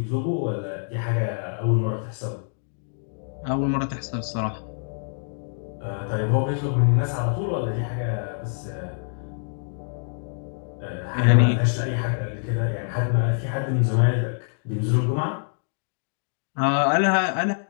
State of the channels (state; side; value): silent; right; digital silence